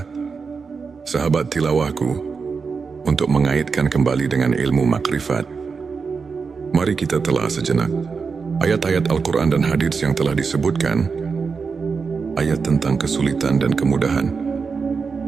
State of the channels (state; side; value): quieter; left; 5.1 dB